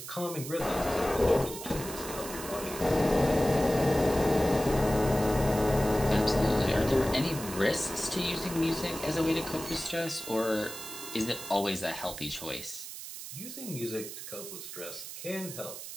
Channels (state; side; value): noise; right; hiss, 10 dB below the sound